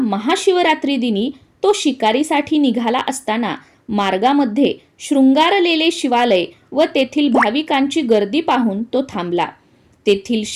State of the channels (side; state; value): both; identical; correlation 1.00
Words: दिनी तो शिकारीसाठी निघाला असताना मार्गामध्ये शृंगारलेले शिवालय व तेथील भाविकांची गर्दी पाहून तो थांबला. तेथील